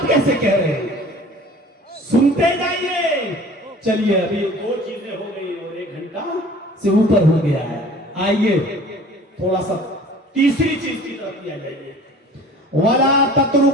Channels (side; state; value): both; normal; correlation 0.46